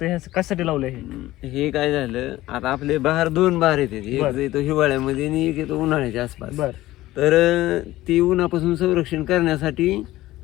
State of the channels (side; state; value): right; quieter; 16.4 dB